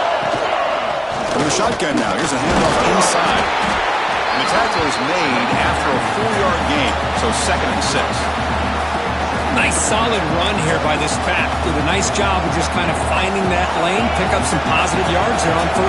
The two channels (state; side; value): identical; both; correlation 1.00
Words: From the shotgun now. Here's a handoff inside. And the tackle is made after a 4-yard gain. So 2nd and 6. Nice solid run here by this back. Did a nice job of just kind of finding that lane, pick up some positive yards there on